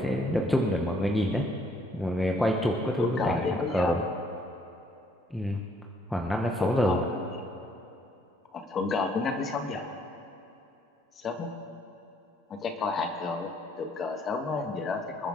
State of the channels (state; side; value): normal; both; correlation 0.66